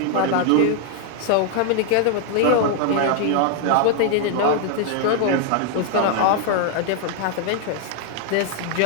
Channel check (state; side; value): different; both; correlation 0.00